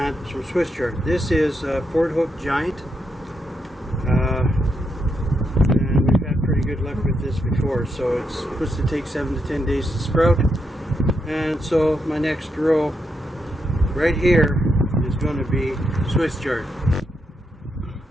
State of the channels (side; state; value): both; normal; correlation 0.81